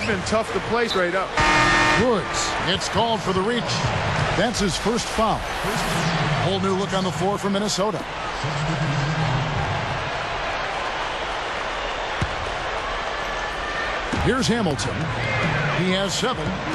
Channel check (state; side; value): identical; both; correlation 1.00